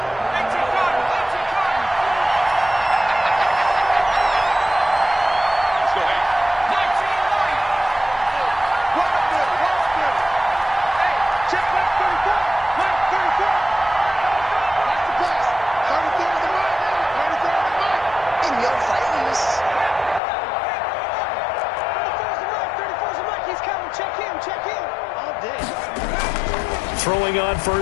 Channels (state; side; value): drops out; right; at 20.2 s